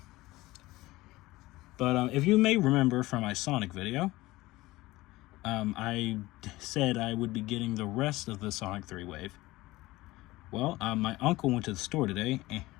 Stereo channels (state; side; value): quieter; right; 18.9 dB